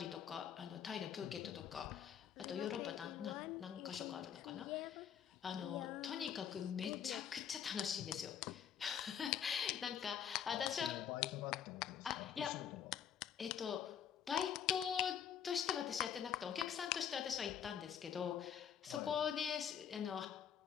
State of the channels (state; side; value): quieter; right; 8.7 dB